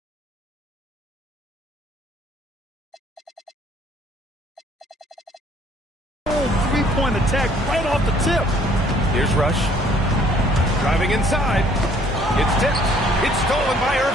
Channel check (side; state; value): both; normal; correlation 0.60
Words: A 3-point attack right off the tip. Here's Rush. Driving inside. It's tipped. It's stolen by